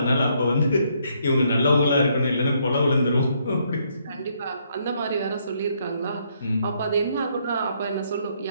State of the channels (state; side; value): inverted; both; correlation -0.72